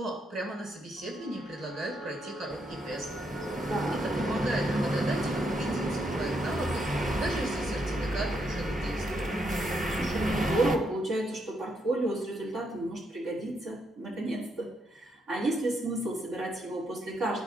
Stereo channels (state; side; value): normal; both; correlation 0.77